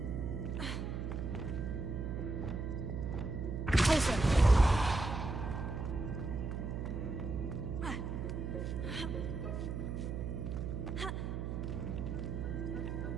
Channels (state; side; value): noise; right; hum, 3 dB below the sound